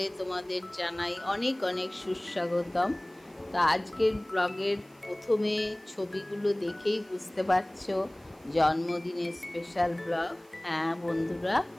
তোমাদের জানাই অনেক অনেক সুস্বাগতম। তো আজকের ব্লগের প্রথমে ছবিগুলো দেখেই বুঝতে পারছো জন্মদিনের স্পেশাল ব্লগ। হ্যাঁ বন্ধুরা,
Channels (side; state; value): right; noise; hiss, 30 dB below the sound